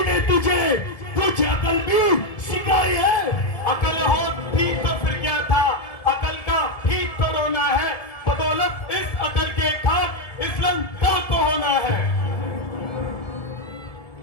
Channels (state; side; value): late; right; 1.7 ms